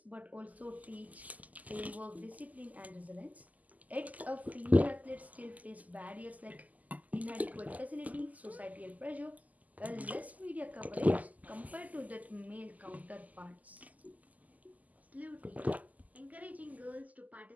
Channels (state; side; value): late; left; 0.078 ms